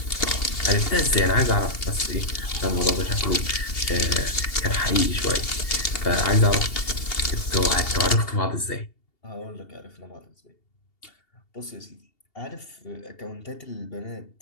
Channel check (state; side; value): late; right; 2.8 ms